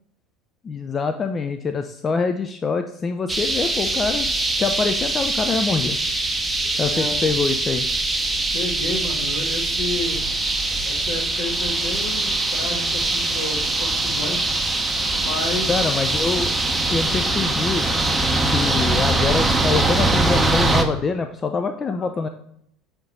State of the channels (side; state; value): both; normal; correlation 0.72